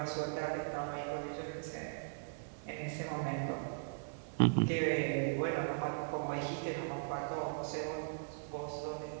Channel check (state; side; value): silent; left; digital silence